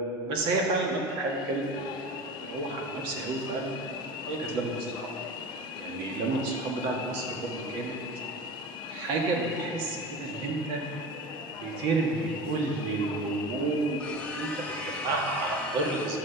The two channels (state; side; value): normal; both; correlation 0.31